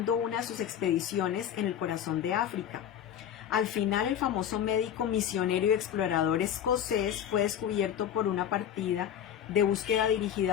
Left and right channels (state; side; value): quieter; right; 9.6 dB